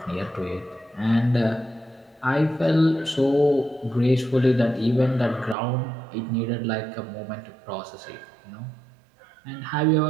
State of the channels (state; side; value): drops out; left; at 5.6 s